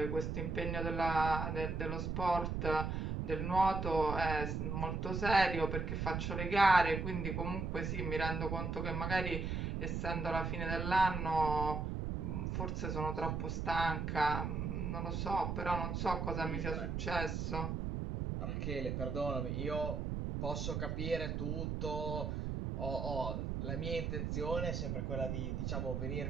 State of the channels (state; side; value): noise; right; rumble, 2 dB below the sound